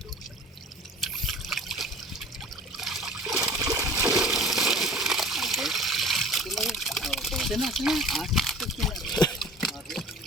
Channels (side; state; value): both; normal; correlation 0.43